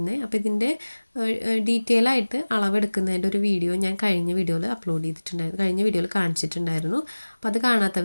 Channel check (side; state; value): both; inverted; correlation -1.00